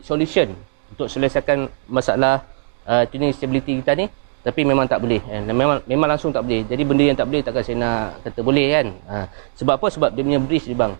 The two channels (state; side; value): silent; left; digital silence